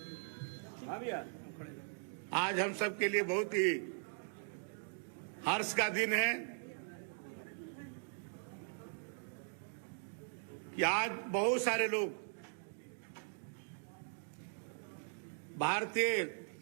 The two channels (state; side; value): silent; left; digital silence